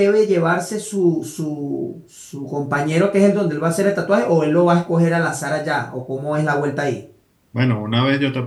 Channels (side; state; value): both; identical; correlation 1.00